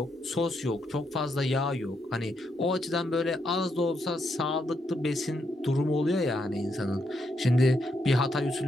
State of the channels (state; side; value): normal; both; correlation 0.79